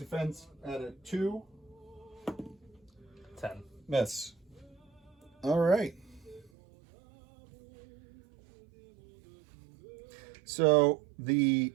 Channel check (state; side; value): drops out; left; at 6.5 s